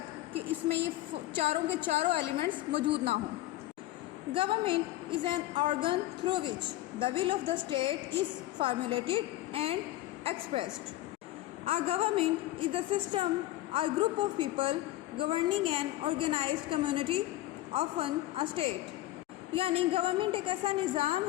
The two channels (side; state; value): right; quieter; 15.8 dB